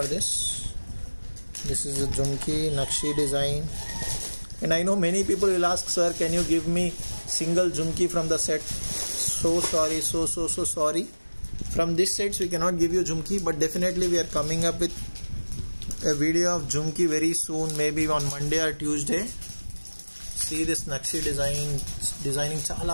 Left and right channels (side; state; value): both; inverted; correlation -1.00